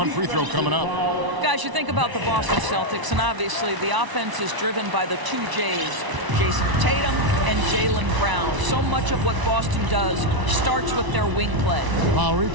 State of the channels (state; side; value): late; left; 1.0 ms